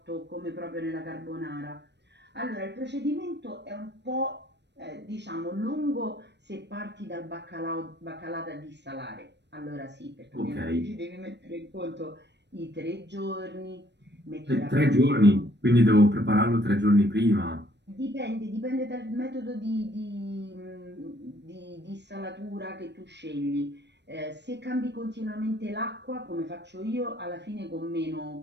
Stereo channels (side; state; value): left; late; 0.50 ms